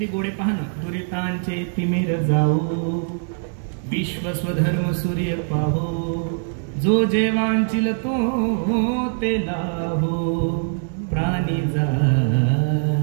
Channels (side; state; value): left; silent; 64 dB below the other